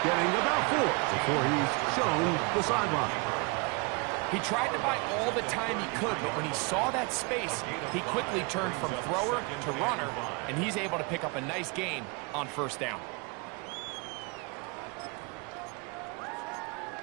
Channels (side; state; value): left; quieter; 30.4 dB